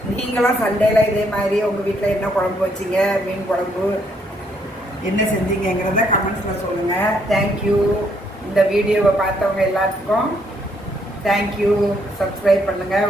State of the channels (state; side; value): normal; both; correlation 0.71